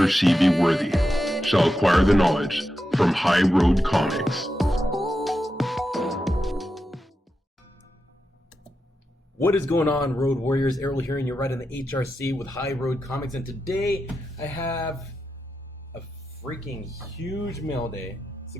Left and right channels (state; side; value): normal; both; correlation 0.88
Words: she be worthy, shall acquire the knowledge from High Road Comics. What is going on, Road Warriors? Errol here, and you're right in the HRC with High Road Comics. And today I have a freaking huge mail day, so